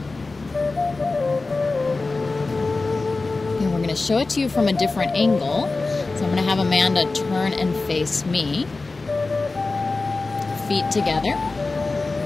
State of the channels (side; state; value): right; quieter; 3.6 dB